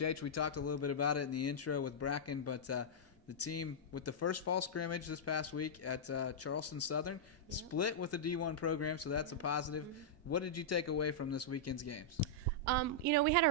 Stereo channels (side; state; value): both; normal; correlation -0.09